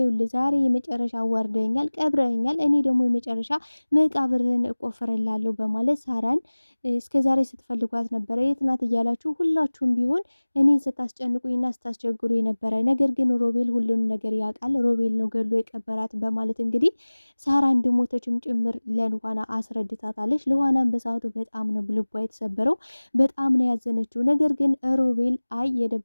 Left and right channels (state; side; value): inverted; both; correlation -1.00